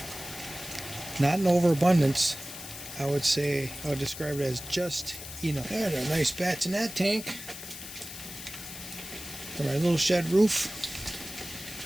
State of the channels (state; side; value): noise; left; hiss, 11 dB below the sound